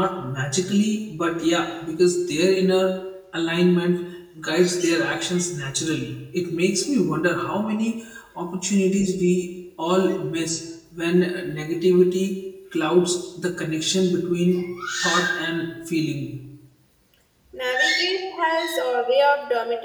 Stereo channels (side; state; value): both; identical; correlation 1.00